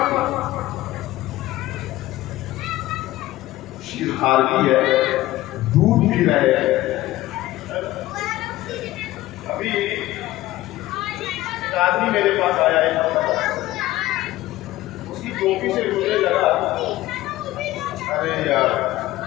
थी? शीर खारगी है, दूध पी रहे हैं। अभी एक आदमी मेरे पास आया है, उसकी टोपी से मुझे लगा, अरे यार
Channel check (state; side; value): quieter; right; 16.6 dB